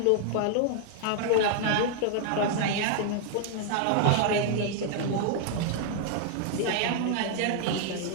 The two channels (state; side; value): different; both; correlation 0.00